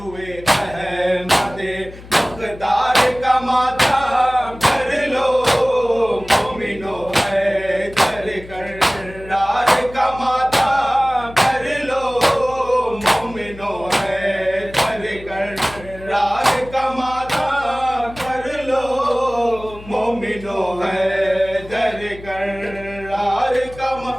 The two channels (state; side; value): noise; left; hum, 17 dB below the sound